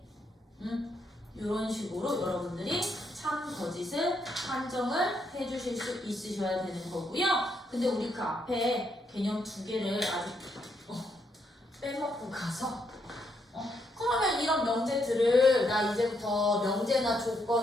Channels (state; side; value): normal; both; correlation 0.77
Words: 이런 식으로 여러분들이 참 거짓을 판정을 해주실 수 있으셔야 되는 거고요. 근데 우리 그 앞에 개념 두 개를 아직 빼먹고 가서 그러면 이런 명제들을 나 이제부터 명제나